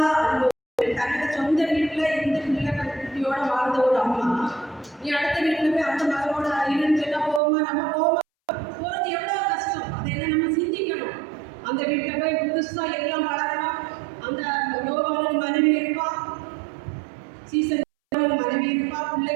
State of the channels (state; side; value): drops out; left; at 7.4 s